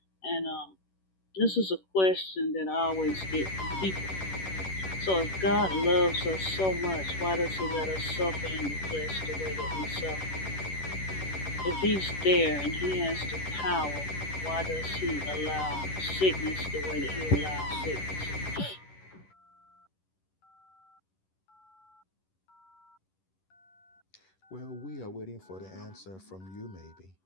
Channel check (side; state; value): right; late; 11 ms